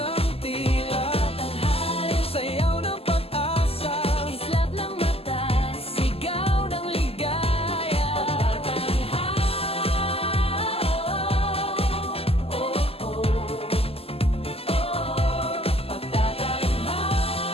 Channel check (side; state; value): right; late; 0.28 ms